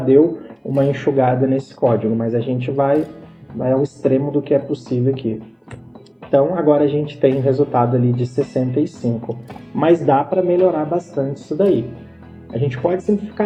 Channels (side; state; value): both; identical; correlation 1.00